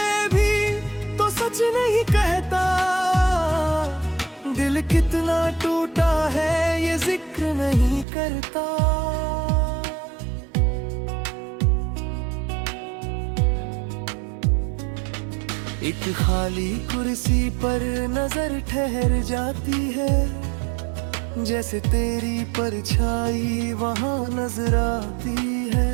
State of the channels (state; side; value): drops out; left; at 8.1 s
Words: भी तो सच नहीं कहता, दिल कितना टूटा है ये जिक्र नहीं करता। एक खाली कुर्सी पर नजर ठहर जाती है, जैसे तेरी परछाई वहां नजर आती है।